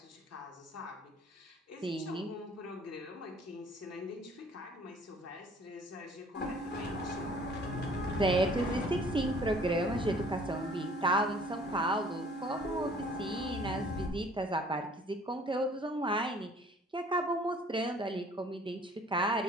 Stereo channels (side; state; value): both; normal; correlation 0.55